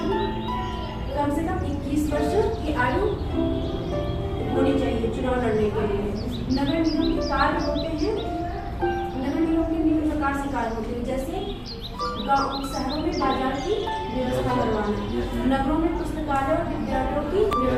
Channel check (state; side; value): identical; both; correlation 1.00